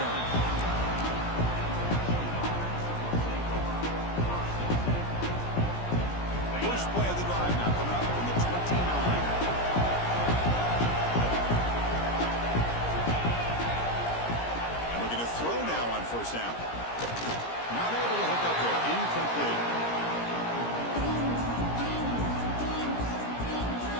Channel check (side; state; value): right; late; 17 ms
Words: First play of the drive now coming up from the 29. And looking to throw now on first down. Not able to hook up there. Incomplete.